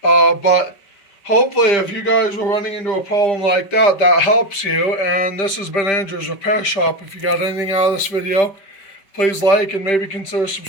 But hopefully if you guys were running into a problem like that, that helps you. And this has been Andrew's Repair Shop. If you got anything out of this video, please like and maybe consider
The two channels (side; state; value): right; late; 5.1 ms